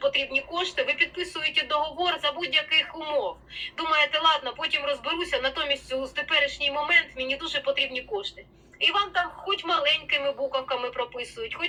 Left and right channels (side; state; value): both; identical; correlation 1.00